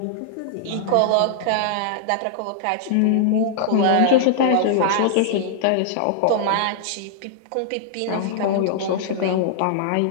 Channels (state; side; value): different; both; correlation -0.01